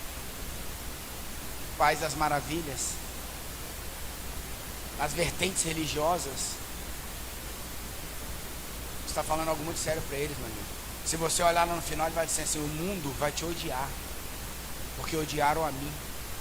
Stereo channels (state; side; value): identical; both; correlation 1.00